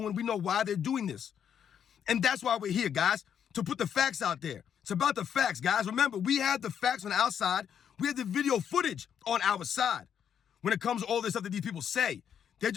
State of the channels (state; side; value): quieter; right; 8.5 dB